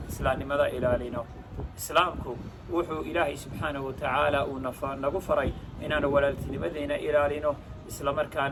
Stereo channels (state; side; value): identical; both; correlation 1.00